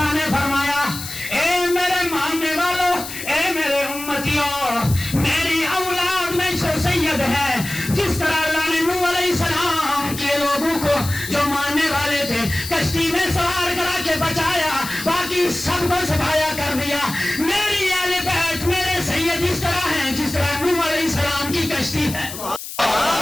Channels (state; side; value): noise; left; hiss, 10 dB below the sound